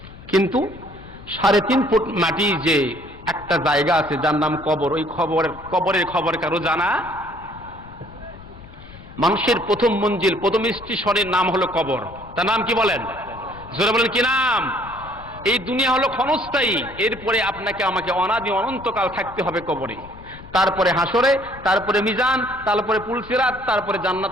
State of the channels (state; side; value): noise; left; rumble, 18 dB below the sound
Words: কিন্তু 3.5 ফুট মাটি যে একটা জায়গা আছে যার নাম কবর, ওই কবরের খবর কারো জানা? মানুষের প্রথম মঞ্জিল, প্রথম স্টেশনের নাম হলো কবর। তার নাম কি বলেন? জোরে বলেন কি নাম? এই দুনিয়া হলো ক্ষণস্থায়ী, এরপরে আপনাকে আমাকে অনাদি অনন্তকাল থাকতে হবে কবরে। তারপরে হাসরে, তারপরে মিজান, তারপরে পুলসিরাত, তারপরে জান্নাত